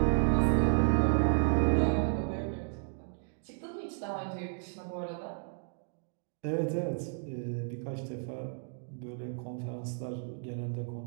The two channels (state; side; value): silent; left; 56 dB below the other